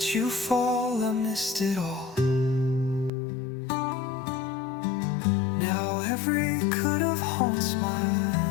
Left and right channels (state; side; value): drops out; right; at 3.1 s